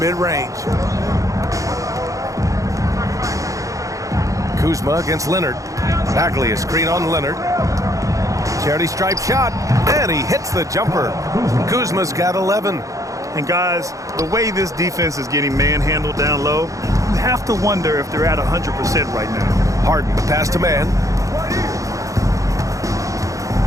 mid-range. Kuzma against Leonard. Bagley a screen on Leonard. Charity stripe shot, and he hits the jumper. Kuzma's got 11. And guys, the way this defense is getting manhandled down low, you have to wonder if they're at 100% right now. Harden, the pass to Mann.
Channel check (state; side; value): late; left; 0.16 ms